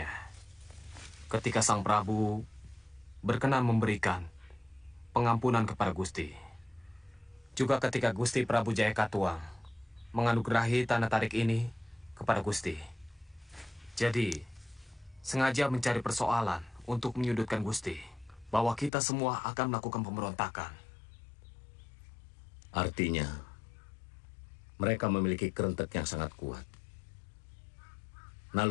ketika Sang Prabu berkenan memberikan pengampunan kepada Gusti. Juga ketika Gusti Prabu Jaya Katuang menganugerahi tanah tarik ini kepada Gusti. Jadi, sengaja mencari persoalan untuk menyudutkan Gusti, bahwa kita semua akan melakukan pemberontakan. Artinya, mereka memiliki kerentek yang sangat kuat.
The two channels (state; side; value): drops out; right; at 18.9 s